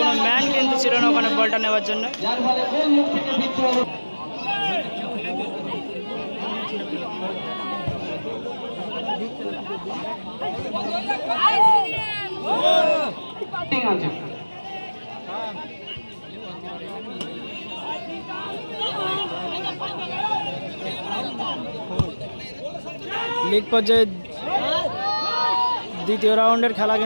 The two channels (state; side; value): inverted; both; correlation -1.00